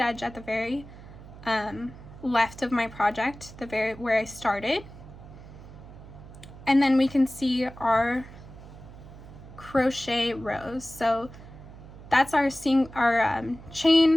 at the very left of my project, where I started. And then we can see our crochet rows. So that's our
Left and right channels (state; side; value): noise; right; hum, 17 dB below the sound